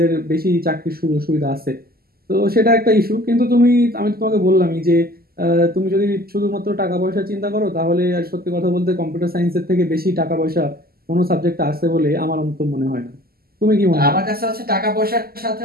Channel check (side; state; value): left; late; 0.44 ms